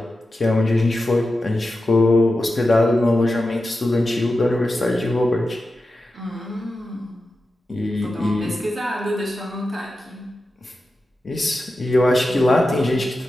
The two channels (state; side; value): normal; both; correlation 0.92